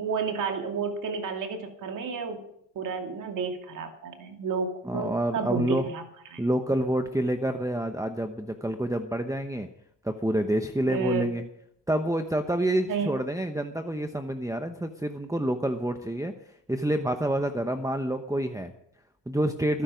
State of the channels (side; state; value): both; normal; correlation 0.66